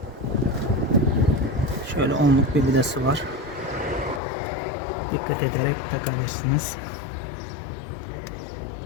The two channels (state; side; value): drops out; right; at 4.2 s